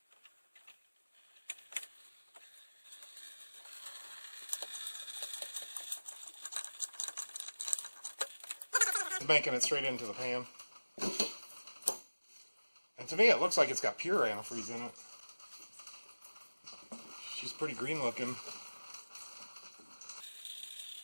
making it straight into the pan. And to me, it looks like it's got pure antifreeze in it. She's pretty green looking.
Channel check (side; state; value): both; inverted; correlation -1.00